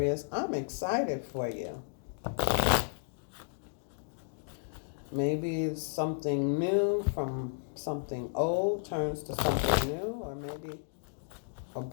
I'm excited for you. Maybe it's something new from something old turns to something new, or maybe a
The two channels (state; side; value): silent; right; digital silence